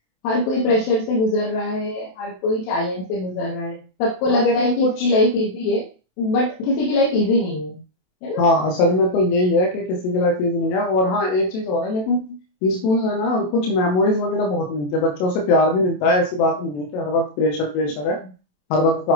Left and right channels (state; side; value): late; right; 27 ms